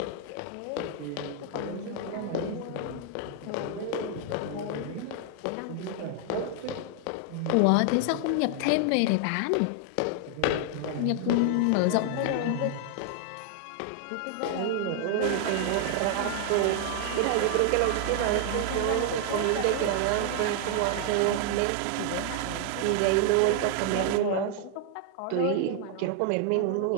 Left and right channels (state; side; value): different; both; correlation 0.00